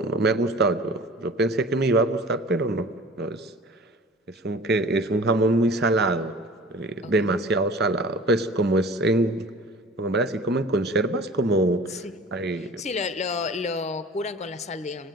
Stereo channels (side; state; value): both; normal; correlation 0.43